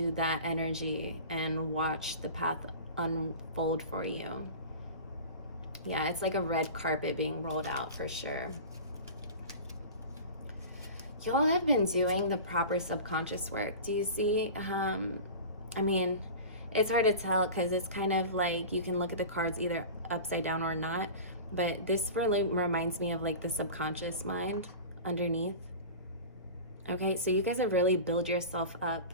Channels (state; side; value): inverted; both; correlation -0.34